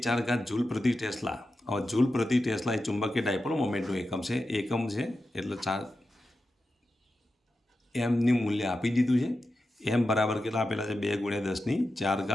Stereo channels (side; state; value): both; normal; correlation 0.91